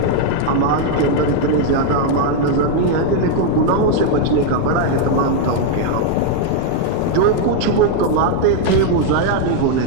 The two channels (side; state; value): both; different; correlation 0.00